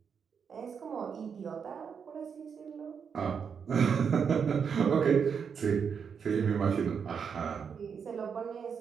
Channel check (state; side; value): quieter; left; 6.7 dB